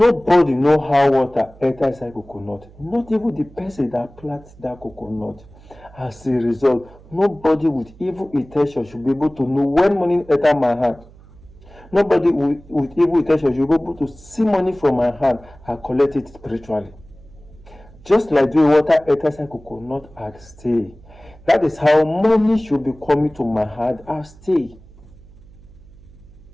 know how water enter inside coconut, not even the person that plants that coconut. As a result, nobody with evil intention should be able to know when money enter my hand. Nobody with evil intention should be able to see money from my hand and collect it spiritually. Just like the water enters inside coconut and stay. That is how money should be coming to my hand and stay.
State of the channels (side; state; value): right; noise; hum, 23 dB below the sound